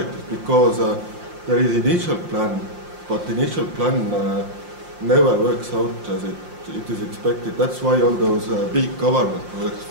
because there is initial plan, but the initial plan never works out as it is expected. That's why all those big government projects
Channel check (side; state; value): left; late; 5.7 ms